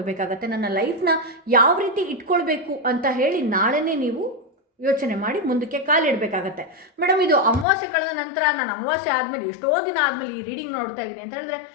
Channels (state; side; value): drops out; right; at 7.7 s